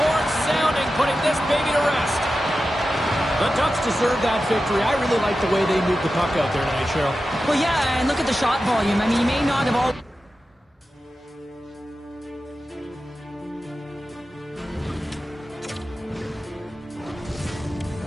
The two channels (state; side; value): normal; both; correlation 0.93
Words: horn sounding, putting this baby to rest. The Ducks deserve that victory. I really like the way they moved the puck out there tonight, Cheryl. Well, yeah, and look at the shot volume. I mean, you may not have all...